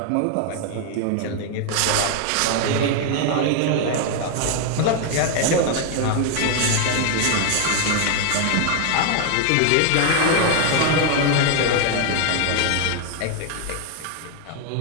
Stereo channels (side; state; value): both; different; correlation 0.00